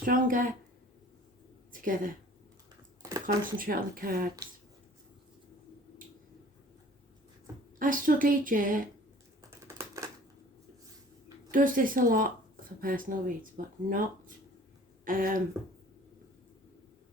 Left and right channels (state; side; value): normal; both; correlation 0.49